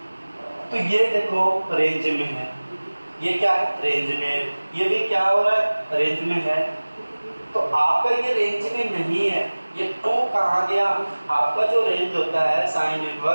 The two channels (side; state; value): both; inverted; correlation -1.00